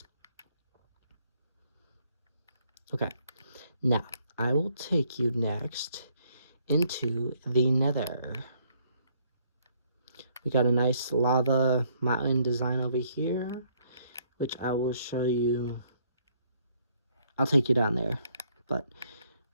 Okay. Now, I will take you next into the nether. We got a nice lava mountain design over here, which I will show you. I'll take you down there, but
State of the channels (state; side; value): inverted; both; correlation -0.67